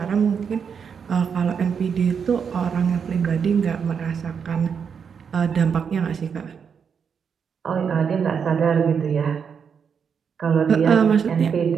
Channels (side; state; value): left; quieter; 6.7 dB